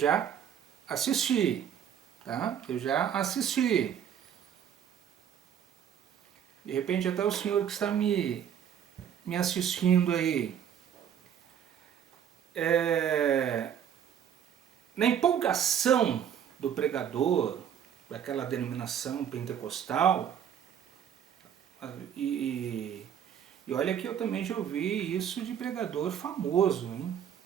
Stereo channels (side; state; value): left; quieter; 9.1 dB